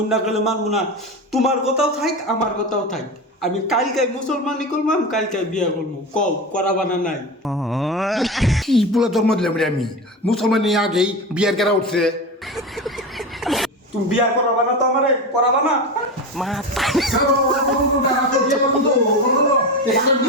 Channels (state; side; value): normal; both; correlation 0.23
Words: অন্য কালে মানবো না তোমার কথাও থাক আমার কথাও থাক আমি কালকে মুসলমানি করলাম কালকে বিয়া করবো কও করাবা না নাই কি বলে জন্ম দিলাম রে আমি মুসলমানি আগেই বিয়ার কেরা উঠছে তুমি বিয়া করাবা না তো আমারে করাবা না